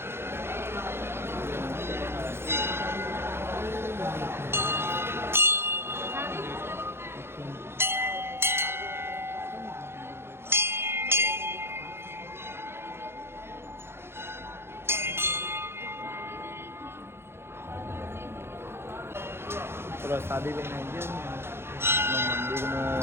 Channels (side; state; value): left; late; 0.12 ms